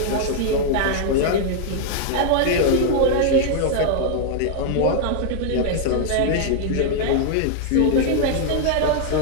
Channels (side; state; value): both; different; correlation 0.00